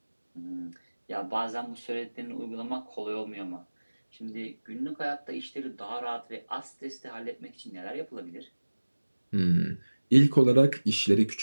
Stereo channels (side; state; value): both; inverted; correlation -1.00